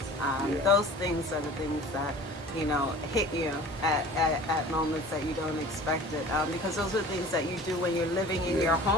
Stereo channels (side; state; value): both; normal; correlation 0.43